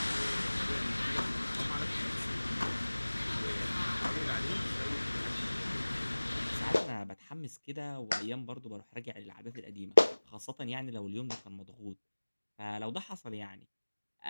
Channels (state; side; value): inverted; both; correlation -1.00